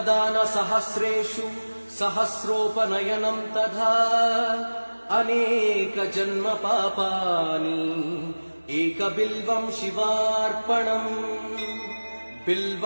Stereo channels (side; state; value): both; inverted; correlation -1.00